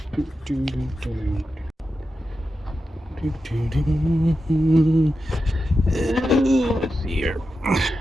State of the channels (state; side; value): normal; both; correlation 0.90